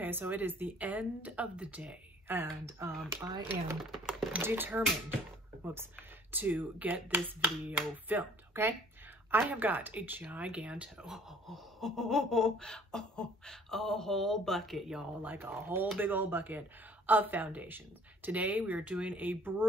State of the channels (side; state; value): both; normal; correlation 0.54